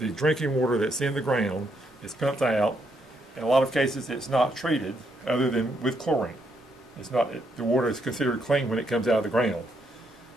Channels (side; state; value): both; normal; correlation 0.76